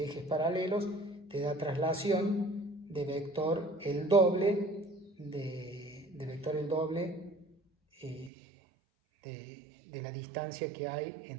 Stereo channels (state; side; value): drops out; left; at 8.3 s